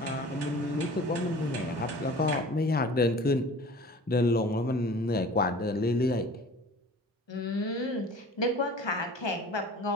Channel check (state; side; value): normal; both; correlation 0.43